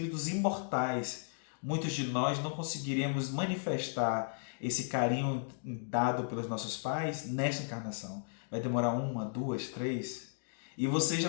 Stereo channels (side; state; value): right; silent; digital silence